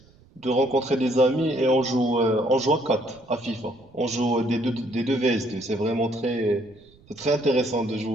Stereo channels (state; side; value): noise; right; rumble, 28 dB below the sound